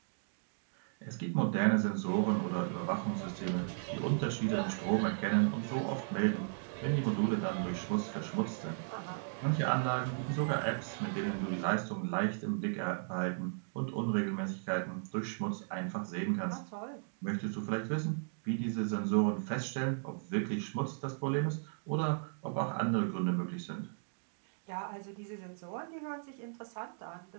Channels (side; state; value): left; silent; digital silence